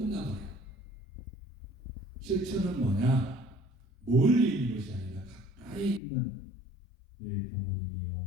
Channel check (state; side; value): drops out; right; at 6.0 s